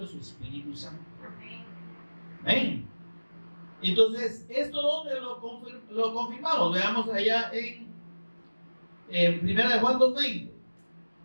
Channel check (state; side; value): inverted; both; correlation -1.00